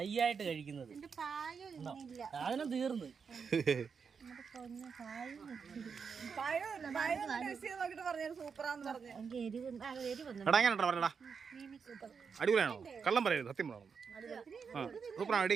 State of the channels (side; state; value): left; quieter; 6.0 dB